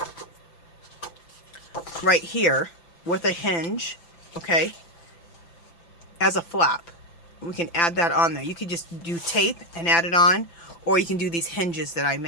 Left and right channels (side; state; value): right; late; 5.9 ms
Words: right here with a hinge, okay, as a flap. We can add that on there. You could just do tape and add it on, or you can do these hinges that I